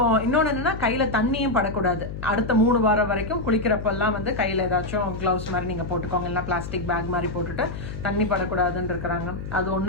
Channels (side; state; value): left; noise; hum, 8 dB below the sound